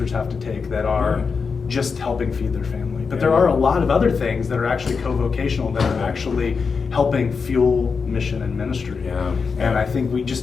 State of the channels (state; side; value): quieter; right; 5.3 dB